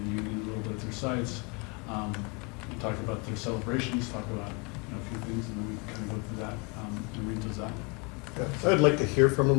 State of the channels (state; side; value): quieter; right; 31.7 dB